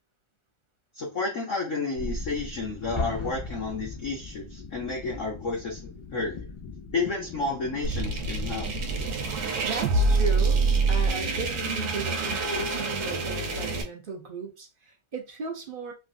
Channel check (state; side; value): late; right; 1.4 ms